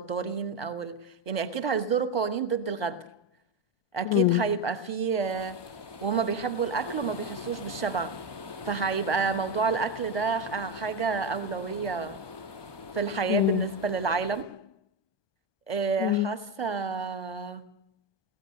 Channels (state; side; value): late; right; 1.2 ms